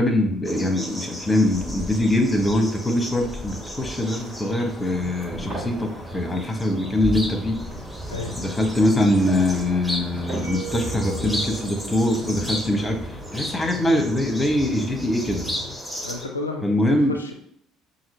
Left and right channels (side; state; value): both; normal; correlation 0.74